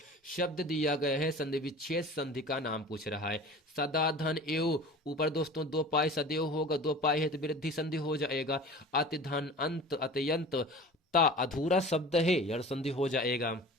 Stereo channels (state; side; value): normal; both; correlation 0.39